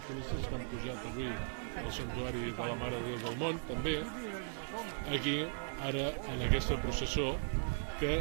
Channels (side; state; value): left; silent; digital silence